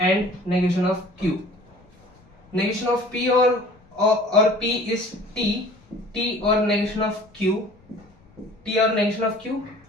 and negation of Q. Negation of P और P इज T और नेगेशन ऑफ Q, T और नेगेशन ऑफ Q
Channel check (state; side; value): noise; left; rumble, 29 dB below the sound